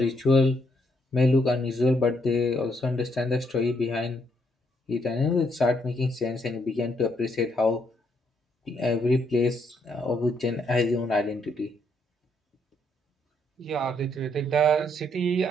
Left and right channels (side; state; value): both; normal; correlation 0.73